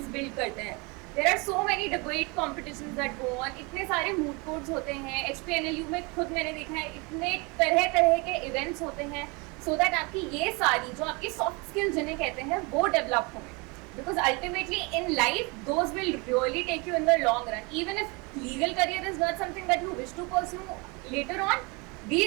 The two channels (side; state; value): left; quieter; 28.9 dB